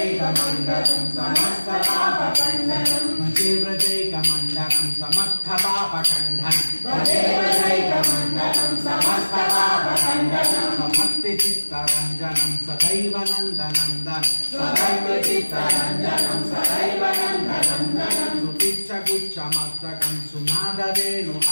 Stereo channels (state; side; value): inverted; both; correlation -1.00